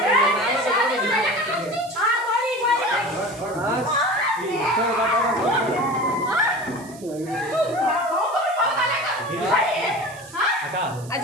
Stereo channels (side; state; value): right; noise; hiss, 20 dB below the sound